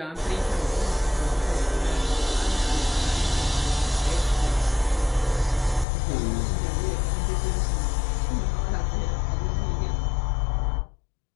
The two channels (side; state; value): right; drops out; at 5.9 s